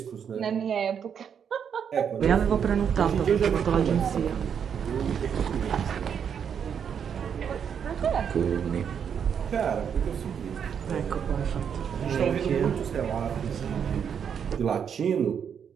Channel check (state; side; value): quieter; left; 7.7 dB